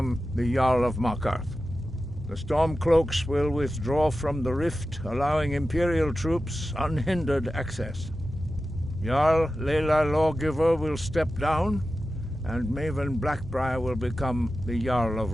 the Jarl of Markarth. The Stormcloaks will withdraw from the Rift, allowing Imperial troops unhindered access. Jarl Leila Lawgiver will step down, and Maven Blackbriar will become the Jarl of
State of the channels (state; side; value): normal; both; correlation 0.93